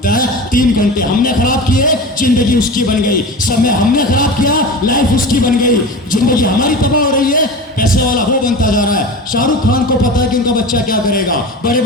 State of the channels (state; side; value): normal; both; correlation 0.30